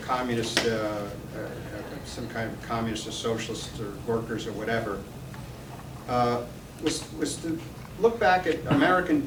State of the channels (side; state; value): both; identical; correlation 1.00